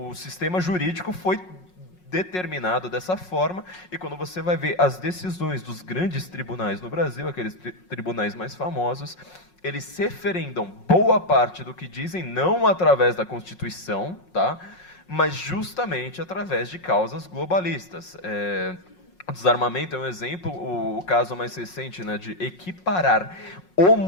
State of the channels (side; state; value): right; late; 5.5 ms